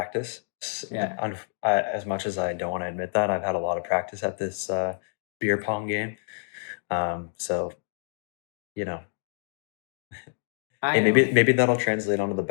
Yeah. As much as I don't want to admit that, I've had a lot of practice at this beer pong game. So you know, hey, I know. maybe that'll translate onto the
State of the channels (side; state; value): right; silent; digital silence